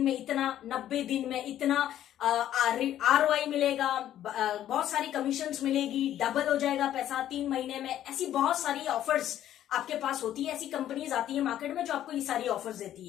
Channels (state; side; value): quieter; right; 11.8 dB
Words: में इतना, 90 दिन में इतना ROI मिलेगा, बहुत सारी कमीशंस मिलेगी, डबल हो जाएगा पैसा 3 महीने में। ऐसी बहुत सारी ऑफर्स आपके पास होती है, ऐसी कंपनीज आती है मार्केट में जो आपको ये सारी ऑफर्स देती